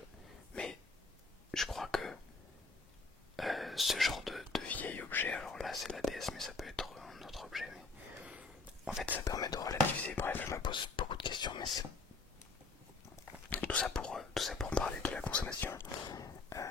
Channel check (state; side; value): quieter; right; 3.8 dB